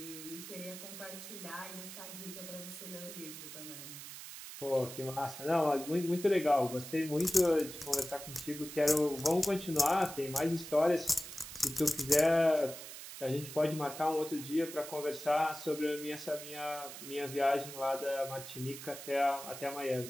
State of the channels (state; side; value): noise; right; hiss, 11 dB below the sound